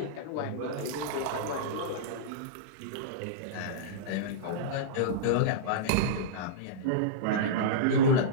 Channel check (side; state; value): both; different; correlation -0.04